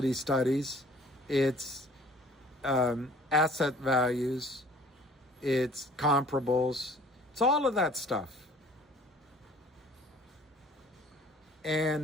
studies. It's asset values. It's comparables. It's all of that stuff.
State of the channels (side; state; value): both; normal; correlation 0.52